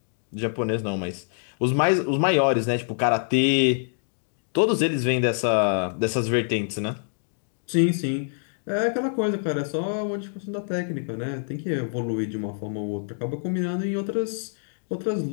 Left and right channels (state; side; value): silent; right; digital silence